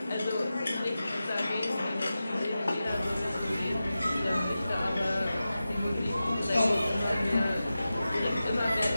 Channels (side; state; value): both; inverted; correlation -0.94